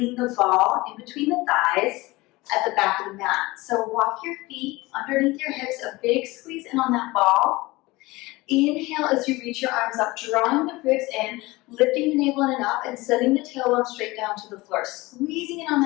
the ball in between the thighs at the back of the mat. So walk your feet underneath your hips, a big squeeze in on that ball. Inhale as you reach your arms up, drawing the ribs in, lifting the navel in and up, and sending the tailbone straight down to the floor. Squeezing in on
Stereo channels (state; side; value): quieter; right; 21.2 dB